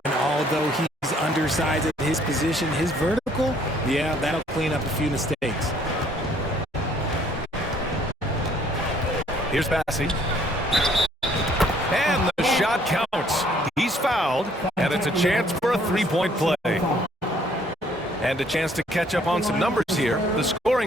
And although he's undersized at his position, his vertical, yeah, that'll clean up a few mistakes. Here's Bassey. And the shot counts. He's fouled, and it's a chance for a 3-point play. And a chance to catch up on some numbers here. The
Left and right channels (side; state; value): both; normal; correlation 0.62